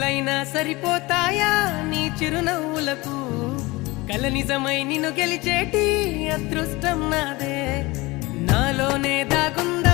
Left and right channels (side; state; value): right; quieter; 22.3 dB